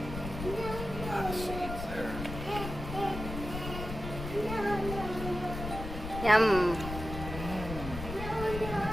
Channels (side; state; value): left; noise; rumble, 7 dB below the sound